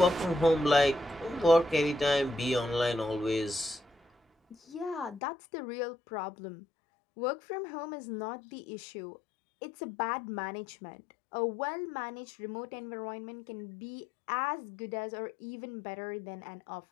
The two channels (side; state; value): right; drops out; at 5.2 s